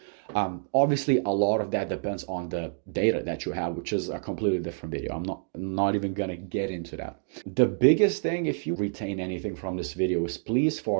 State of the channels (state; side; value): silent; left; digital silence